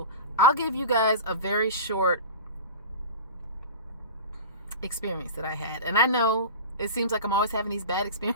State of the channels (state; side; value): inverted; both; correlation -0.31